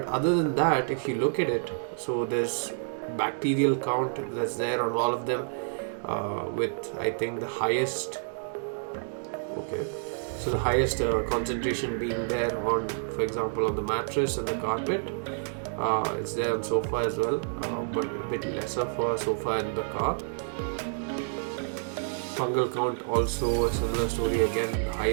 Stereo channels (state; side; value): silent; left; digital silence